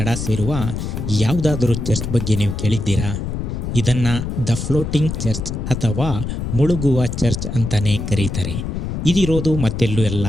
ಸೇರುವ ಯಾವುದಾದರೂ ಚರ್ಚ್ ಬಗ್ಗೆ ನೀವು ಕೇಳಿದ್ದೀರಾ? ಇದನ್ನು ದ ಫ್ಲೋಟಿಂಗ್ ಚರ್ಚ್ ಅಥವಾ ಮುಳುಗುವ ಚರ್ಚ್ ಅಂತಲೇ ಕರೀತಾರೆ. ಇದಿರೋದು ಮತ್ತೆಲ್ಲೂ ಅಲ್ಲ,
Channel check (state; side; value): noise; left; rumble, 4 dB below the sound